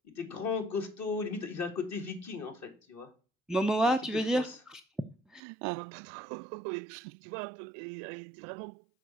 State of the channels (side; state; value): left; drops out; at 5.4 s